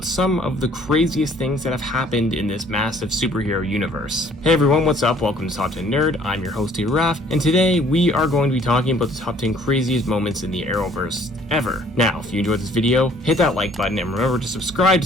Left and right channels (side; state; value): both; normal; correlation 0.58